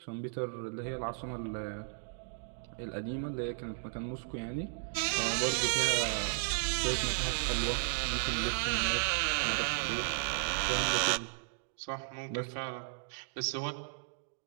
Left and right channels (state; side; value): silent; left; digital silence